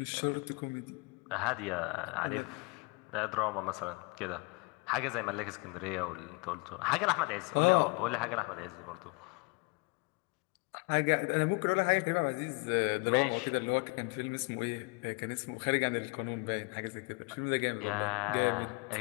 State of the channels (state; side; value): quieter; right; 29.1 dB